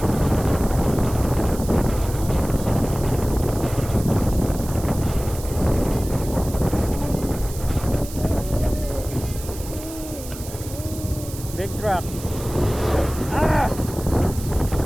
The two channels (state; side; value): noise; right; hiss, 14 dB below the sound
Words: Big truck. Ah!